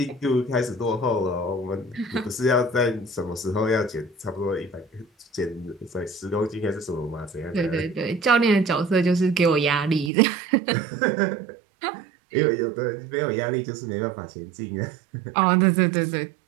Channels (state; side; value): drops out; left; at 10.1 s